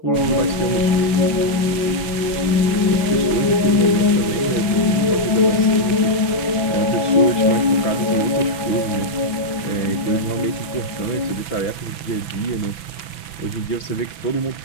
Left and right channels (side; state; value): right; late; 6.0 ms